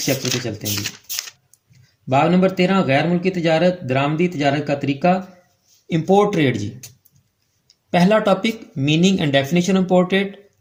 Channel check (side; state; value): both; identical; correlation 1.00